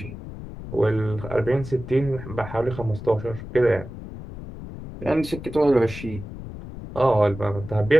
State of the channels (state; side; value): noise; left; rumble, 12 dB below the sound